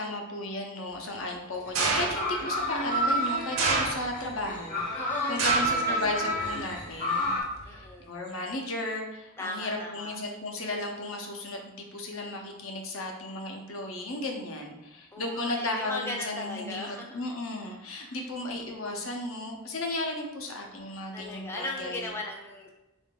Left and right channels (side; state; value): both; normal; correlation 0.02